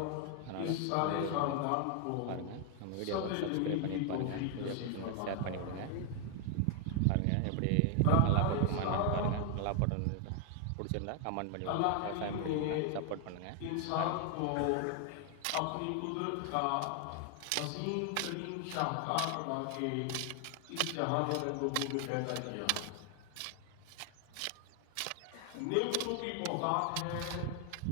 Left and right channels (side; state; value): both; different; correlation 0.00